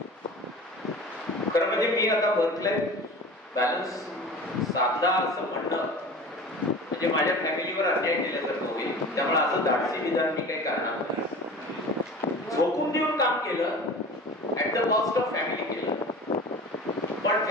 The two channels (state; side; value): normal; both; correlation 0.38